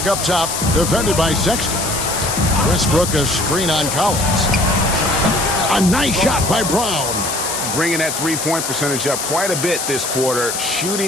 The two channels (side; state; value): left; noise; hiss, 3 dB below the sound